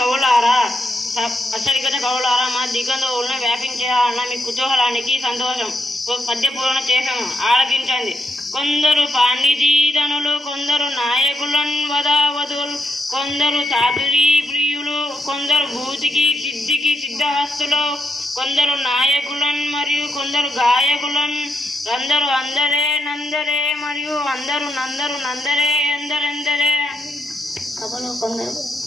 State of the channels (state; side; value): normal; both; correlation 0.82